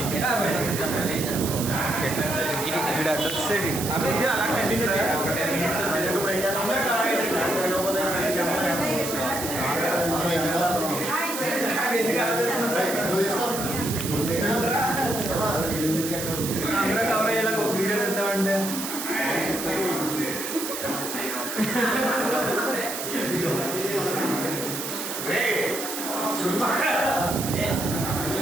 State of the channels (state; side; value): noise; right; hiss, 6 dB below the sound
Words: ఇక్కడ అడ్రస్ అలా కంటిన్యూ అందరూ కవర్ అయ్యేలా ఒక వీడియో తీద్దామంటే